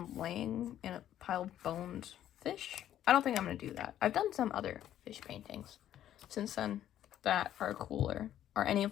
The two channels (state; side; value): quieter; right; 11.5 dB